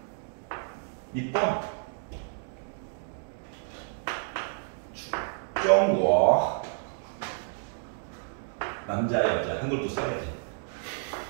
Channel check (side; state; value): left; silent; 58 dB below the other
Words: 니폰 중국 남자 여자 한글도 써야지.